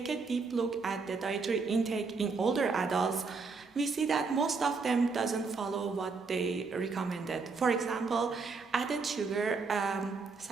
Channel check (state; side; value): quieter; left; 4.5 dB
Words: a deep look at the dietary intake in older adults, we see that most of them doesn't follow what they recommended. For example, added sugar,